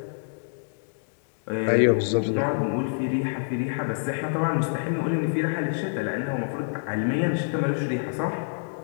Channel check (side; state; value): right; silent; 60 dB below the other